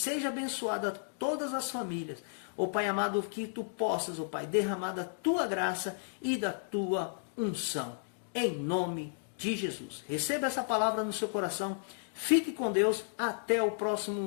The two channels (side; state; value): right; silent; digital silence